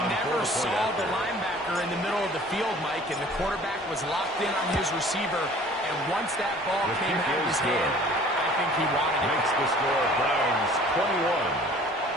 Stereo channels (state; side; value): normal; both; correlation 0.50